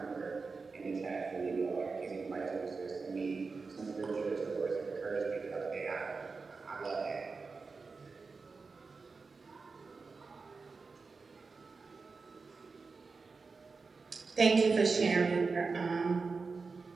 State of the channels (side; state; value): left; quieter; 4.4 dB